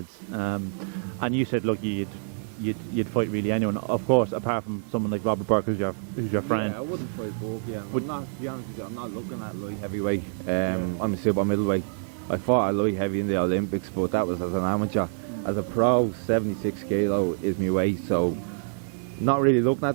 And you said, look, you'd fight really anyone, of course, apart from someone like Robert Burke, who's your friend. Yeah, I wouldn't fight Burke. Yeah, but not, to be honest with you, I'm not looking at light heavyweight. I'm a super middleweight. I fought at light heavy in the Olympics, but that was as an amateur. As a pro, 76 kilo is my weight, so not really looking at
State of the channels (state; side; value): silent; left; 60 dB below the other